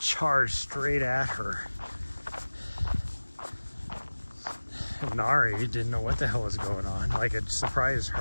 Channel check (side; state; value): both; inverted; correlation -1.00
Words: straight at her. And Nari didn't know what the hell was going on. Like, it surprised